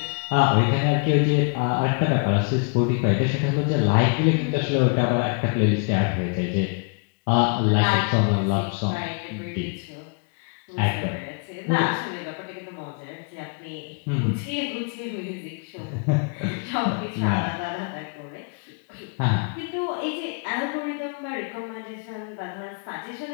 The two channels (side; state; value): right; quieter; 36.5 dB